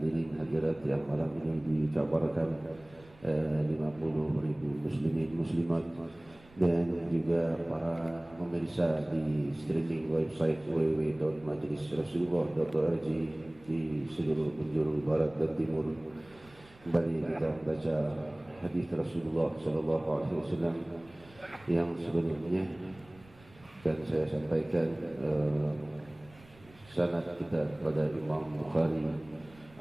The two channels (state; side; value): noise; right; rumble, 25 dB below the sound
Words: hadirat yang malam ini dikabarkan 50.000 muslimin muslimat, dan juga para pemirsa di streaming website www.majlisrasulullah.org di seluruh penjuru barat dan timur. Kembali kita baca hadis Rasulullah sallallahu alaihi wasallam yang sebelumnya, dan saya sampaikan sanad kita kepada Imam Bukhari